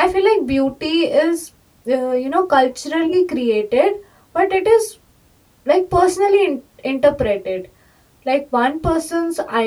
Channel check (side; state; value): both; identical; correlation 1.00